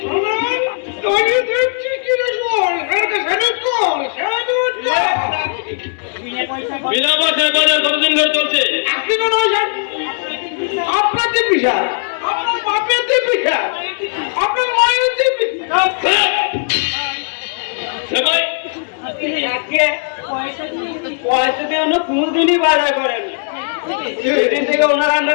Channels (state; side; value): silent; right; 61 dB below the other